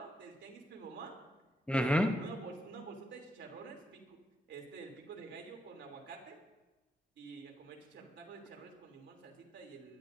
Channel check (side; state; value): both; normal; correlation 0.81